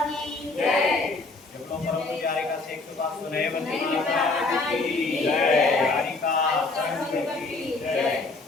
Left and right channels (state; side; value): quieter; right; 3.5 dB